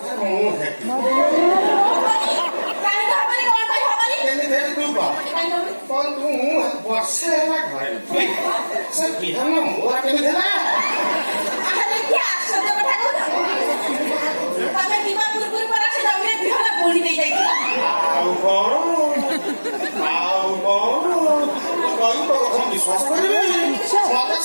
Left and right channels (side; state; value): both; inverted; correlation -1.00